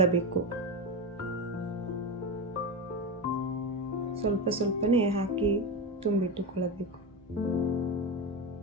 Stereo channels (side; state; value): both; normal; correlation 0.17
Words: ಸ್ವಲ್ಪನೇ ಹಾಕಿ ತುಂಬಿಟ್ಟುಕೊಳ್ಳಬೇಕು.